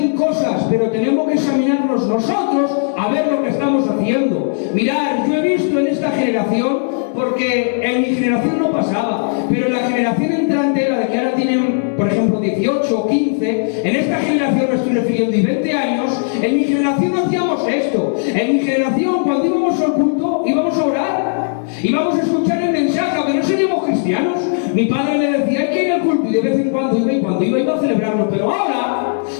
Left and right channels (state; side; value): silent; right; digital silence